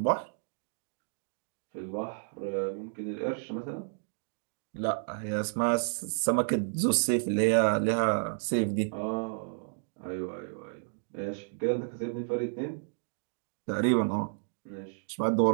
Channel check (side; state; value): left; silent; digital silence